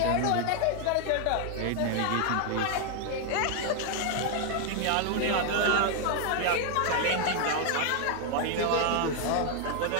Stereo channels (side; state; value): both; different; correlation 0.00